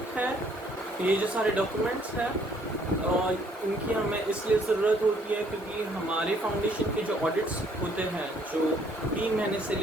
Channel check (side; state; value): both; normal; correlation 0.64